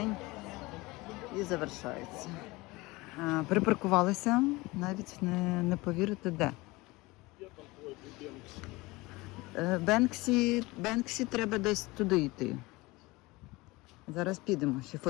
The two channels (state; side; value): quieter; right; 22.2 dB